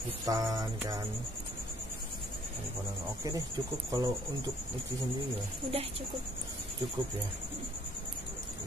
kan. Oke deh, cukup kalau untuk Uci sendiri ya. Udah cukup ya.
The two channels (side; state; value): both; normal; correlation 0.62